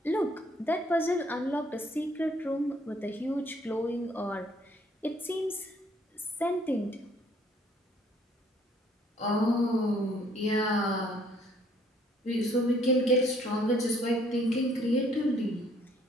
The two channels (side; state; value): both; normal; correlation 0.63